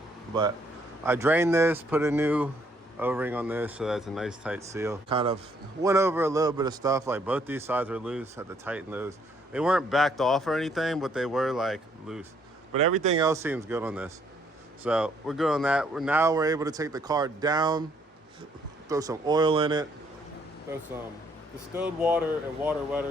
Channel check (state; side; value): normal; both; correlation 0.67